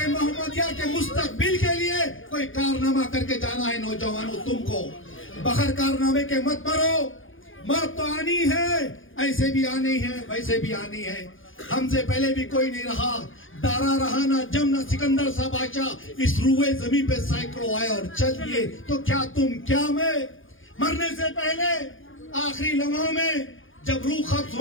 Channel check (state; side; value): late; right; 0.58 ms